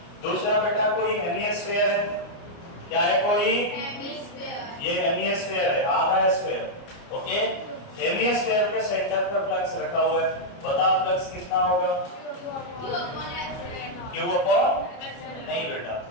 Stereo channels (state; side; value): late; right; 29 ms